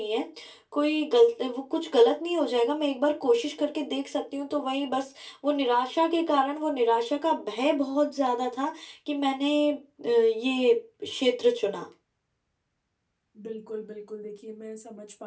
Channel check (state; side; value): identical; both; correlation 1.00